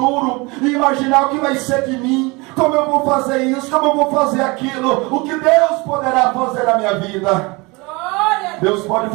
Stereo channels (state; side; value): quieter; left; 25.8 dB